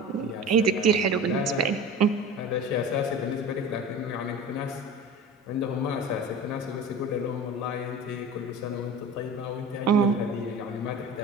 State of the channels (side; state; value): both; normal; correlation 0.35